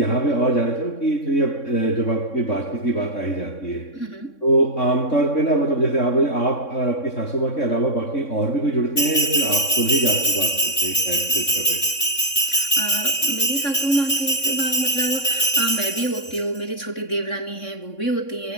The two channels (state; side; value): late; right; 3.6 ms